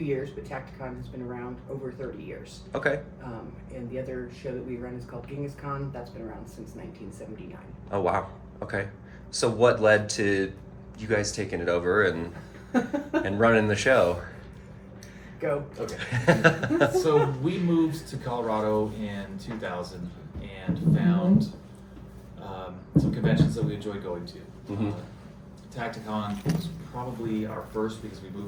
but Tacticon has been around over 30 years. Okay. And the other show that we run is called GenghisCon. That's been around since 1979. Oh wow. Okay. So what led to you guys taking it over and running the show? Go. Okay. So we moved to Colorado in 2000 and found some conventions that we enjoyed going to. Mm-hmm. Tacticon was probably our first because we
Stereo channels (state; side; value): identical; both; correlation 1.00